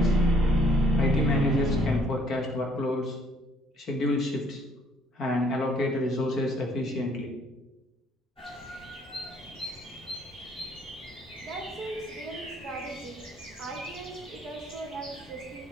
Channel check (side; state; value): both; normal; correlation 0.63